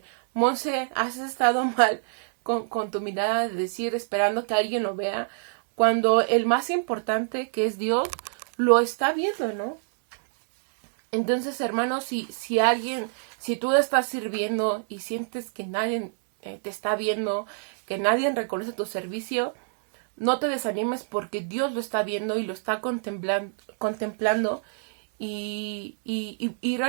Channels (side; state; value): left; silent; digital silence